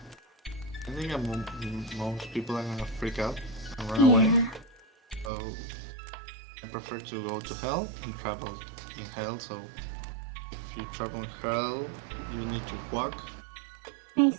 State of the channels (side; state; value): left; drops out; at 5.3 s